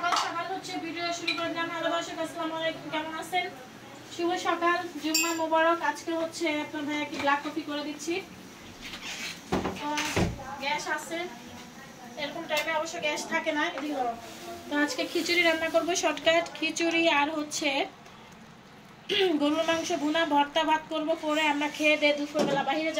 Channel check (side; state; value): both; identical; correlation 1.00